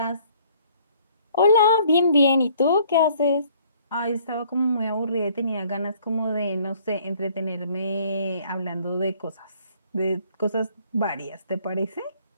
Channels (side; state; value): both; inverted; correlation -0.60